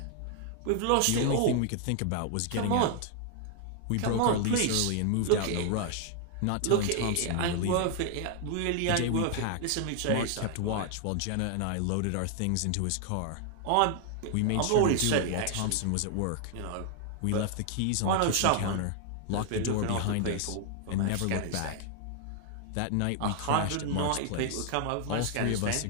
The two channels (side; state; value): both; different; correlation 0.00